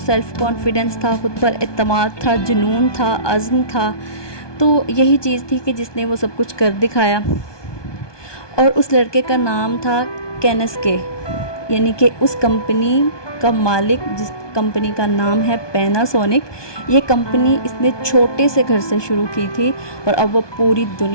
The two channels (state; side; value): late; right; 1.2 ms